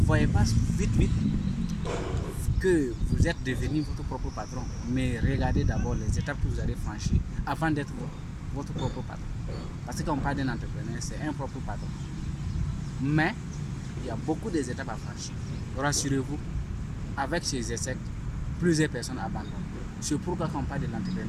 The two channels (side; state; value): both; identical; correlation 1.00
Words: pas vite que vous êtes devenu votre propre patron, mais regardez d'abord les étapes que vous allez franchir avant d'être votre propre patron. Parce que quand on parle d'un entrepreneur, c'est un propre patron. Mais il y a beaucoup d'étapes à franchir. Rassurez-vous, avec ces essais, plusieurs personnes abandonnent. C'est pourquoi quand on parle de